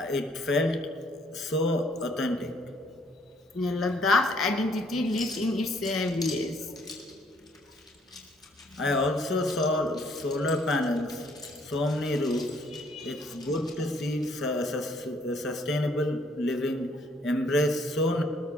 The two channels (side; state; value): both; normal; correlation 0.65